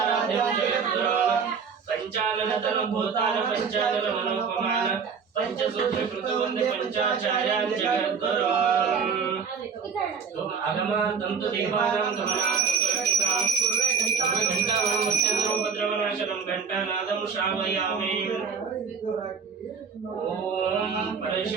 जगद्गुरुं। पंचानन तनु भूतान पंचानन मनोपमान पंचसूत्र कृत वन्दे पंचाचार्यान् जगद्गुरुं। तुम आगम तंतु देवानां गमनां घंटावनं मत्यद्रोपद्रवनाशनं घंटानादं श्रावयामि। ओम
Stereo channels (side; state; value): left; quieter; 6.1 dB